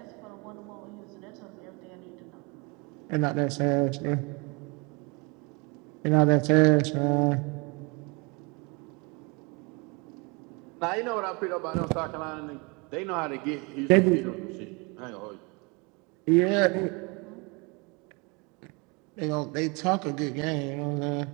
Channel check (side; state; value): left; quieter; 29.8 dB